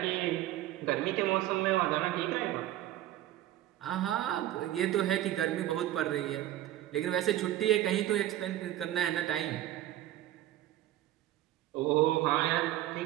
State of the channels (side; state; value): left; quieter; 13.9 dB